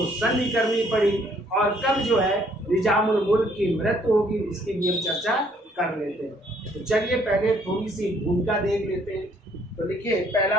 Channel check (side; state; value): both; normal; correlation 0.64